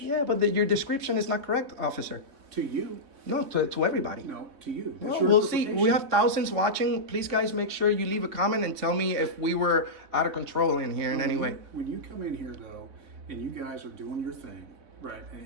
Yeah, but your description is not correct, officer. To you. No, to everybody. No, to you. That's Well, your we'll see. We interpretation. have thousands watching. Please, guys, make sure you leave a comment and tell me if we were out of control in here in any way. When you come in here, though, and you guys are doing your thing, right,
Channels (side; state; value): left; late; 3.4 ms